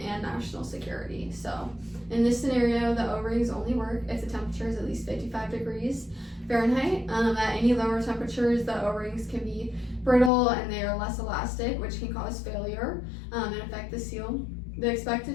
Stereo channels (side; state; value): right; drops out; at 10.3 s